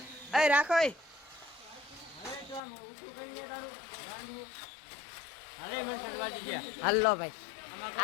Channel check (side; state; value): right; drops out; at 2.6 s